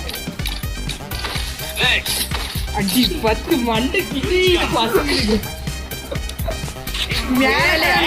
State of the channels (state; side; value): identical; both; correlation 1.00